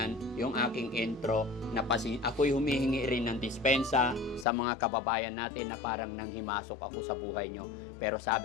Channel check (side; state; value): right; drops out; at 4.5 s